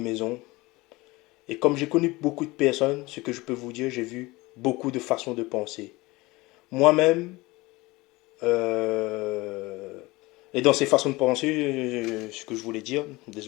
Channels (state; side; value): quieter; right; 21.6 dB